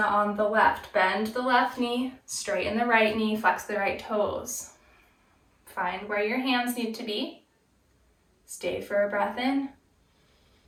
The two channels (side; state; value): both; identical; correlation 1.00